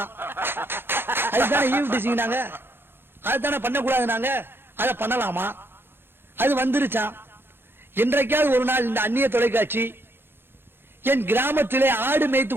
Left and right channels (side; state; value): left; late; 0.10 ms